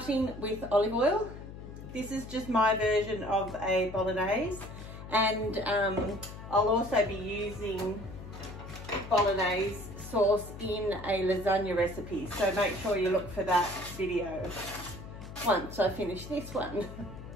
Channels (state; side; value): noise; left; hum, 12 dB below the sound